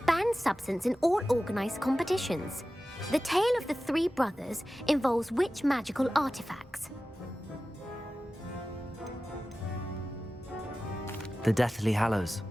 substance in all organised competitions. The tale of the three brothers involves which magical artifacts? The Deathly Hallows.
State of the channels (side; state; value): both; normal; correlation 0.95